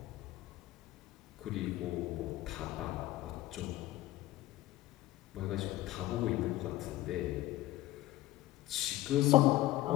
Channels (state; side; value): quieter; right; 16.1 dB